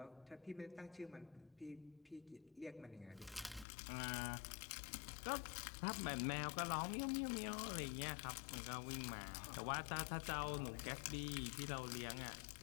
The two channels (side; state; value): right; drops out; at 3.7 s